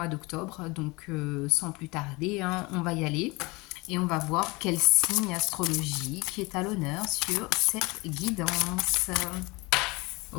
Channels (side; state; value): right; quieter; 24.6 dB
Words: d'octobre. Donc sans plus tarder, hein, on va y aller et on va voir quel signe astrologique est à l'honneur sur cette guidance.